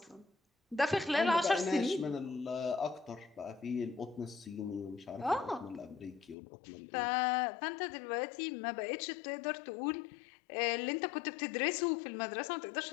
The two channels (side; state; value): right; drops out; at 6.4 s